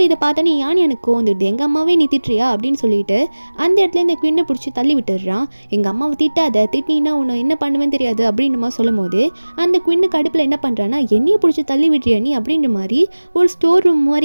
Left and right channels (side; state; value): both; inverted; correlation -1.00